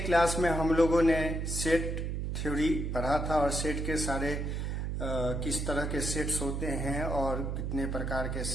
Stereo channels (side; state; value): right; noise; hum, 2 dB below the sound